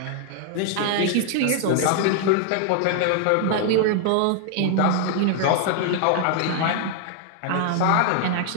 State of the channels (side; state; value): both; different; correlation 0.00